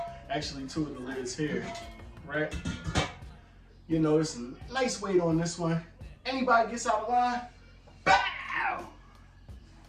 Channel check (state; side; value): identical; both; correlation 1.00